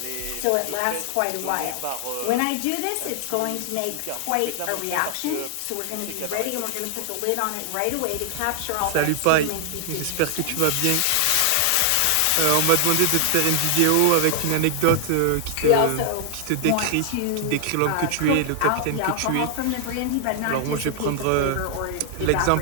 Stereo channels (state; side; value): different; both; correlation 0.00